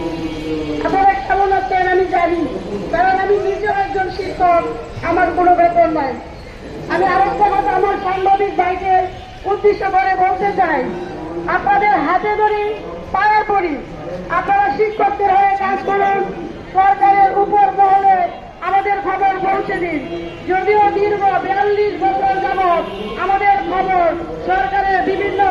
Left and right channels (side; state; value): both; identical; correlation 1.00